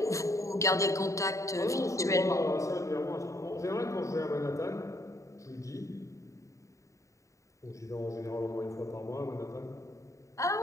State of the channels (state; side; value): late; right; 0.15 ms